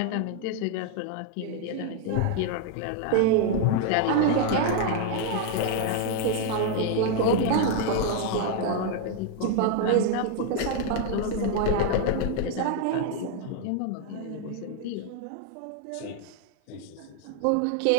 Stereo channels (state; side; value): different; both; correlation 0.00